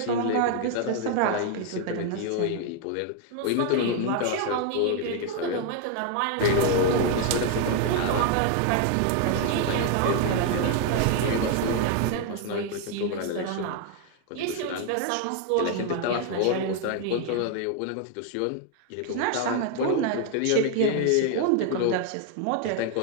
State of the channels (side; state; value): both; different; correlation 0.00